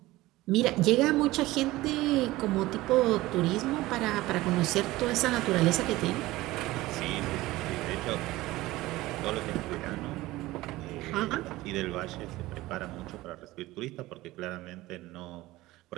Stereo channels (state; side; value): quieter; left; 18.3 dB